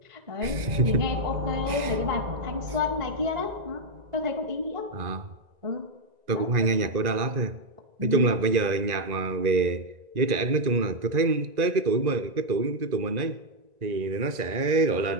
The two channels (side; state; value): left; late; 1.9 ms